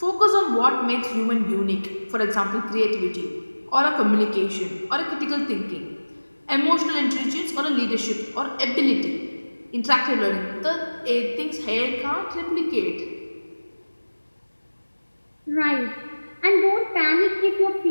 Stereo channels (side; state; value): both; inverted; correlation -1.00